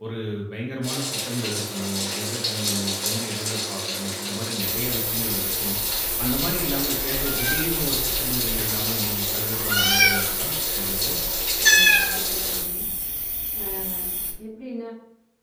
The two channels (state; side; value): identical; both; correlation 1.00